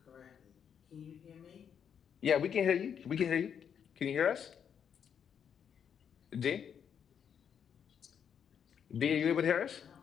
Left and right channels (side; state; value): right; quieter; 7.9 dB